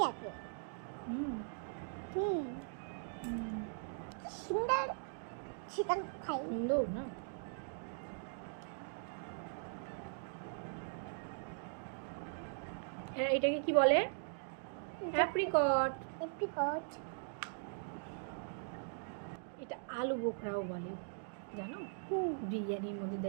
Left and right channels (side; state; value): left; silent; digital silence